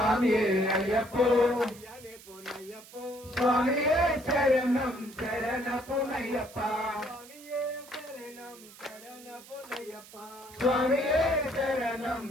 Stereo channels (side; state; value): right; noise; hiss, 20 dB below the sound